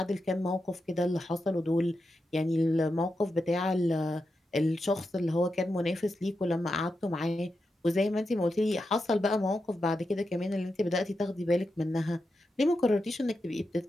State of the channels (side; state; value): both; normal; correlation 0.88